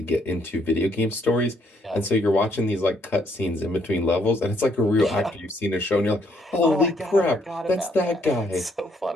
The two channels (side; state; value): both; normal; correlation 0.70